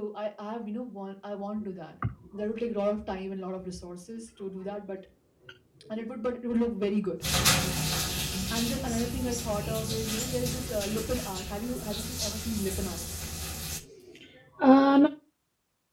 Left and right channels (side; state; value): both; identical; correlation 1.00